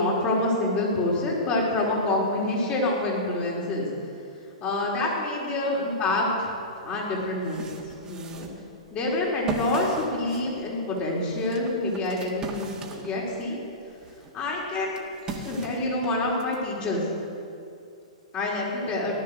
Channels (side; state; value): both; normal; correlation -0.18